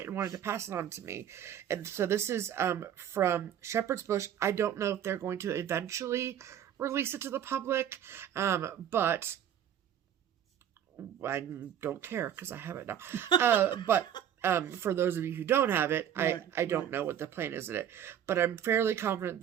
and wanted to pass it on to me. And so this is from Shepherd's Bush. I don't know if they're going to eventually release it to the public, but I don't care because I have it now. But for those of you who don't have it, I don't know what the plan is in it. But I'm fairly confident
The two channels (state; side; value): quieter; left; 9.8 dB